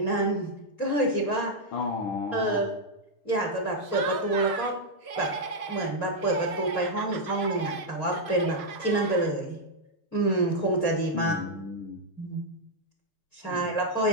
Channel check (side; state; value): right; late; 6.5 ms